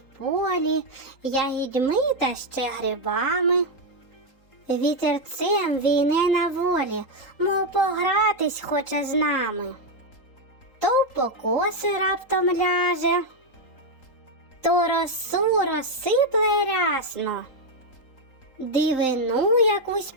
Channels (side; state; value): right; late; 3.8 ms